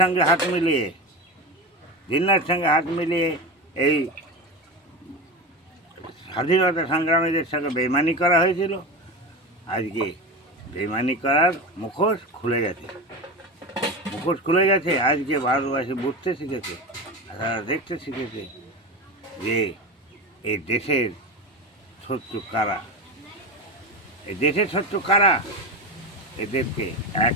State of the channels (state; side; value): normal; both; correlation 0.23